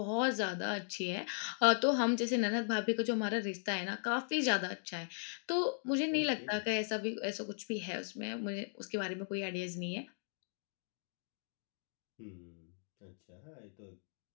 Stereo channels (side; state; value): right; silent; digital silence